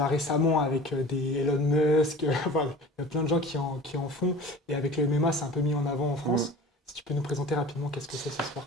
récemment avec des Elon Musk, enfin, il y a plein de gens qui en font, et avec le MMA, c'est un peu mis en avant en France. Si tu peux nous présenter rapidement qu'est-ce que c'est ce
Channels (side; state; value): both; normal; correlation 0.40